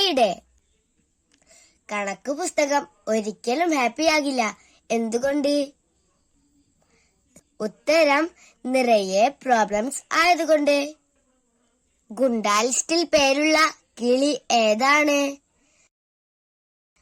കണക്ക് പുസ്തകം ഒരിക്കലും ഹാപ്പിയാകില്ല. എന്തുകൊണ്ട്? ഉത്തരം നിറയെ പ്രോബ്ലംസ് ആയതുകൊണ്ട്. ഗുണ്ടാ ലിസ്റ്റിൽ പേരുള്ള കിളി ഏതാണ്?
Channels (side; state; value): both; identical; correlation 1.00